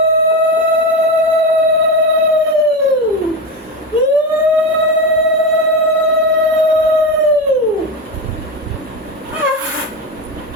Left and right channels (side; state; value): both; normal; correlation 0.17